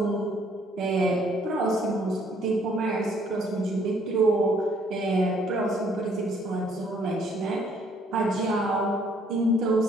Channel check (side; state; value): both; normal; correlation 0.64